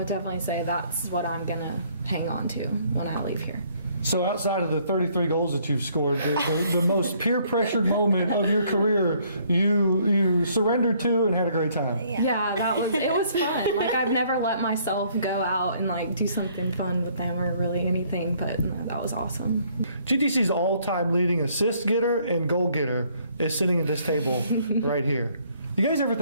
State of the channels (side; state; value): both; inverted; correlation -0.64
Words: definitely say that's what I'm going to hang on to when I leave here. So outside of the 33 goals that you've scored, the most peer-pressured moment of your career, you surrendered to and had a great time. Yeah, it was fun. I've never let myself go out and do something fun with them or really anything, but that was awesome. GTC's all-time leading assist getter and goal getter is sitting at this table right here. You guys ever